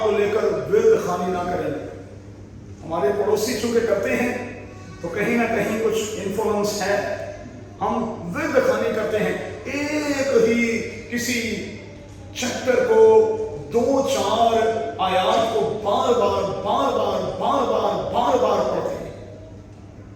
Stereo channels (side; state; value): both; identical; correlation 1.00